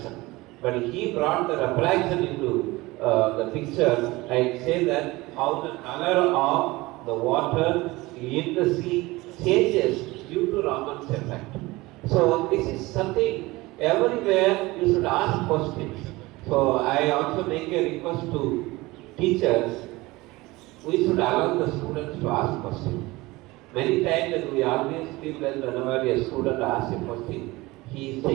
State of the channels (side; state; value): left; quieter; 21.0 dB